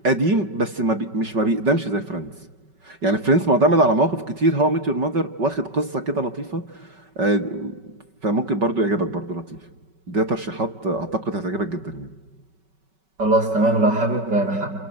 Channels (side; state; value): left; late; 5.3 ms